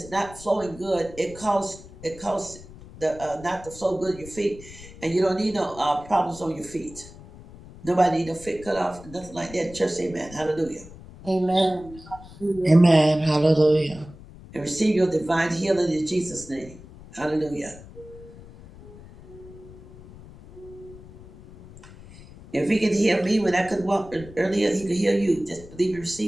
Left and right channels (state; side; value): noise; left; rumble, 18 dB below the sound